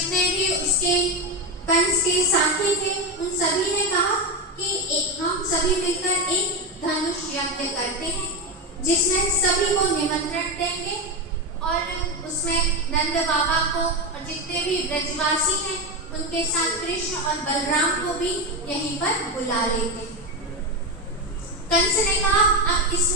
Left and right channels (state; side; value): normal; both; correlation 0.14